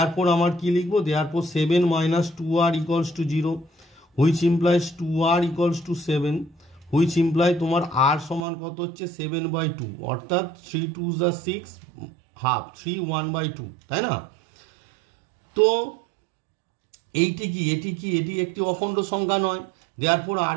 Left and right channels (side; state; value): left; drops out; at 8.5 s